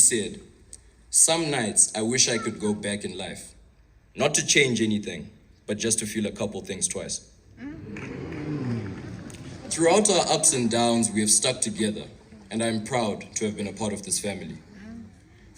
"Some nights I wish I could go back in life, not to change anything, but just to feel a couple things twice." Throughout our ups and downs, we have stuck together, and I'm proud to have been a part of this family.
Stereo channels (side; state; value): both; identical; correlation 1.00